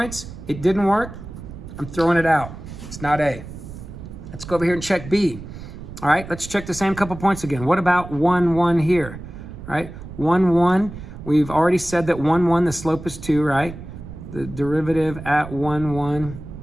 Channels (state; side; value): noise; right; rumble, 12 dB below the sound